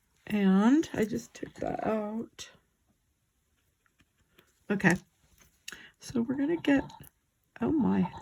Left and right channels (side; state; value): both; identical; correlation 1.00